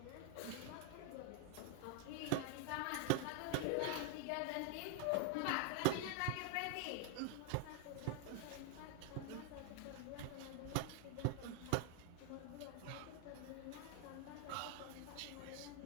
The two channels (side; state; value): both; different; correlation 0.00